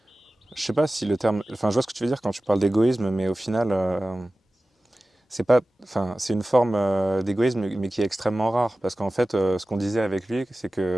sais pas si le terme. Enfin, je vois ce que tu veux dire quand tu parles d'égoïsme, mais au final, c'est pas. Enfin, c'est une forme d'égoïsme, mais qui est extrêmement rare. Parce qu'en fait, ce qu'on disait avec lui, c'est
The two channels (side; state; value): both; normal; correlation 0.96